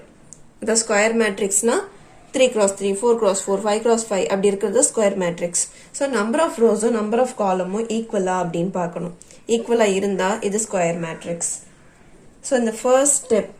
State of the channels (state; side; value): identical; both; correlation 1.00